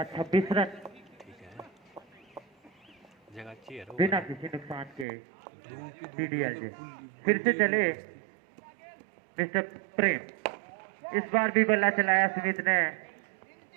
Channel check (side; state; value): left; drops out; at 5.1 s